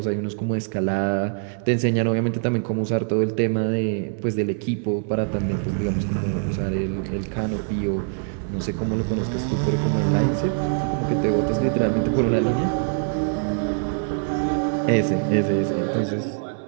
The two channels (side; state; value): left; silent; 63 dB below the other